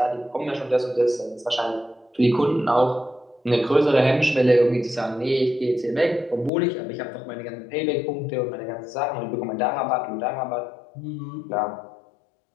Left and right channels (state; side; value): drops out; right; at 6.5 s